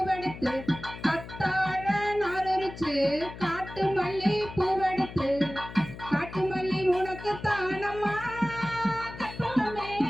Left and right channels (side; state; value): left; noise; hum, 13 dB below the sound